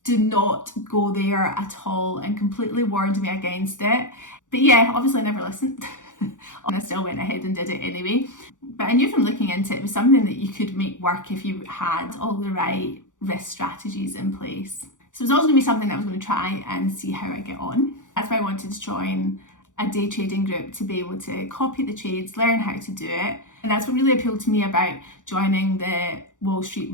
do not go there at all, and completely warned me against it. But yeah, obviously I never listened. And I still went ahead and did it anyway. But I knew from looking into it, it was something that you could make work if you had all the right risk strategies in place. So it was always going to be something that I was going to try and see how I get on. That's why I wanted to join a day trading group, to be able to copy the trades, learn how to do it. And that's what really appealed to me about joining the Wall Street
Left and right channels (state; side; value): late; right; 0.86 ms